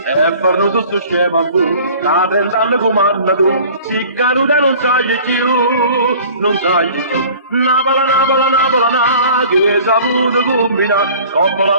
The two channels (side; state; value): both; inverted; correlation -0.47